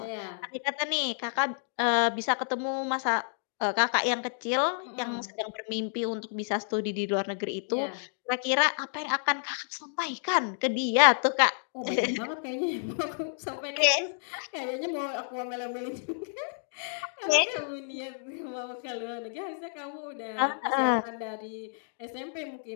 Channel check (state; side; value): silent; right; digital silence